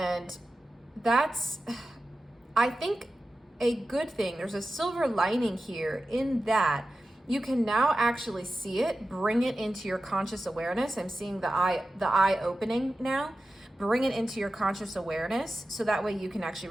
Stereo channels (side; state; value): both; normal; correlation 0.93